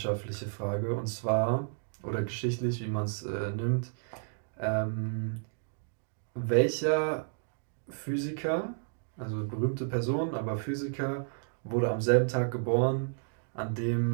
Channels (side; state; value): left; silent; digital silence